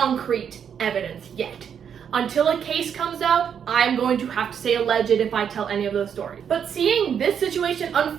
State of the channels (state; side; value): quieter; left; 7.9 dB